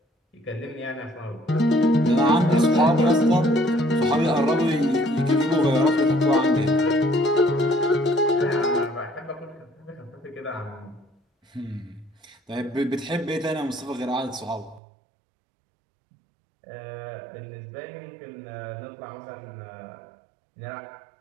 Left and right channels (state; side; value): drops out; left; at 14.8 s